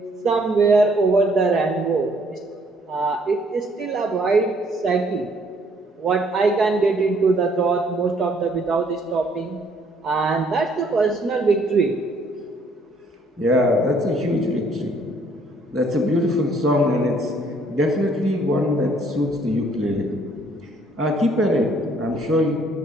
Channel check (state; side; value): normal; both; correlation 0.64